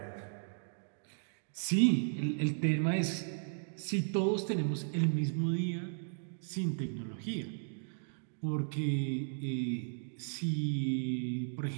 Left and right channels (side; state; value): left; silent; digital silence